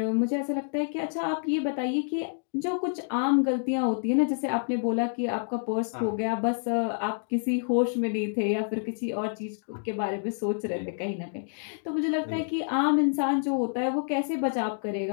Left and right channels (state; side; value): silent; right; digital silence